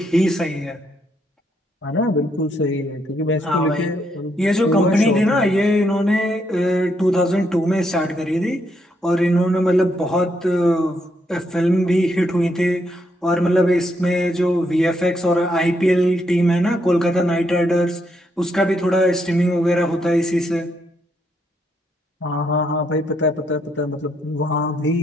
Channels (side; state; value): both; normal; correlation 0.76